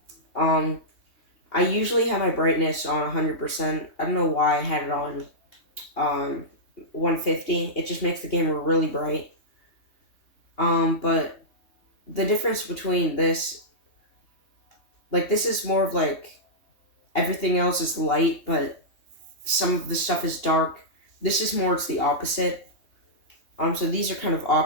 Um, I usually have my brightness on 100%. I don't know why I had it on 150. It just makes the game really bright. But the difference between this, like, this is more of like everything else is light, but some of the stuff is dark. This is more, it's the opposite. So these are kind of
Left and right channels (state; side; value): late; right; 3.2 ms